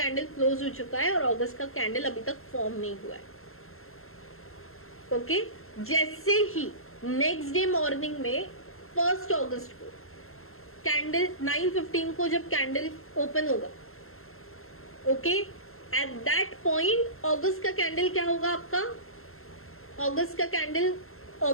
क्लोज हो चुका है और अगस्त का कैंडल अभी तक फॉर्म नहीं हुआ है. ओके, जैसे ही नेक्स्ट डे मॉर्निंग में 1 अगस्त को कैंडल 9:15 को जब कैंडल ओपन होगा, ओके, एट दैट पॉइंट अगस्त का कैंडल क्या होगा आपका, अगस्त का कैंडल,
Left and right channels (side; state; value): right; late; 0.62 ms